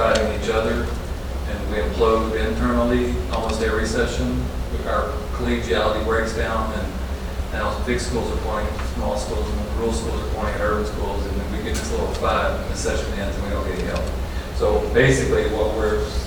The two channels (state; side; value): identical; both; correlation 1.00